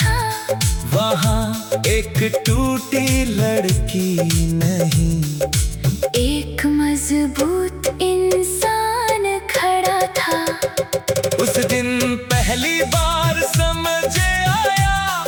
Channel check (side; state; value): both; identical; correlation 1.00